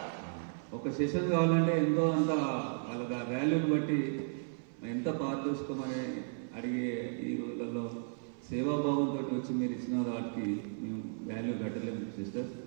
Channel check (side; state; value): left; silent; 55 dB below the other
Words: ఒక సెషన్ కావాలంటే ఎంతో అంత వాళ్ళ వాల్యూని బట్టి ఎంత పారదర్శకమని అడిగే ఈ రోజులలో సేవాభావంతో వచ్చి మీరు ఇచ్చిన వాటికి మేము వాల్యూ కట్టలేము సిస్టర్.